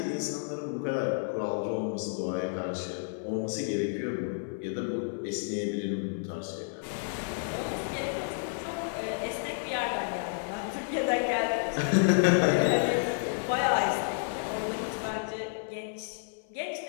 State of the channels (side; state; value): right; silent; 57 dB below the other